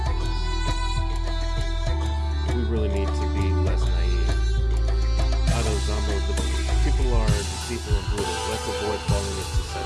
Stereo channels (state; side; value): identical; both; correlation 1.00